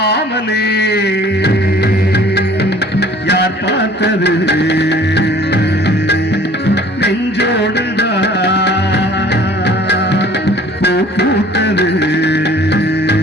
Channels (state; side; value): normal; both; correlation 0.51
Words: யார் பார்த்தது, நெஞ்சோடுதான் பூ பூத்தது,